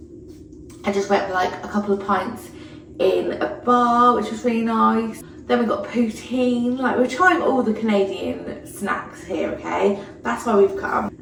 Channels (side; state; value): both; identical; correlation 1.00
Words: and just went for a couple of pints in a bar, which was really nice. Then we got poutine. We're trying all the Canadian snacks here, okay? That's why we've come.